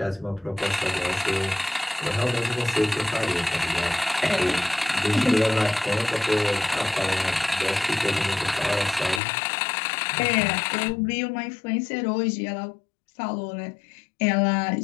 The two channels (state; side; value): drops out; right; at 9.2 s